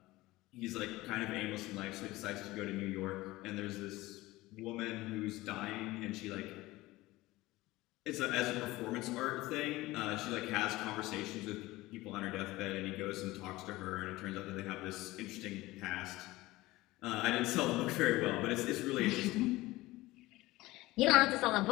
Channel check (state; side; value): quieter; right; 19.0 dB